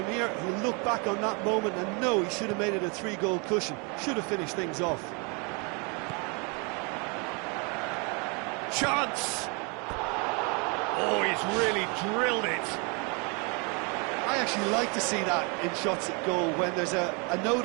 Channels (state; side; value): quieter; left; 32.5 dB